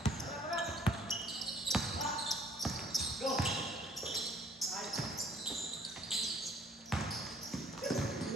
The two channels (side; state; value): both; normal; correlation 0.57